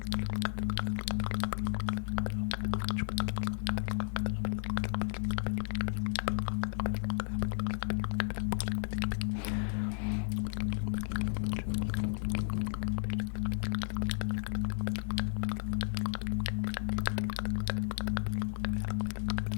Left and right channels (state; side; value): silent; right; digital silence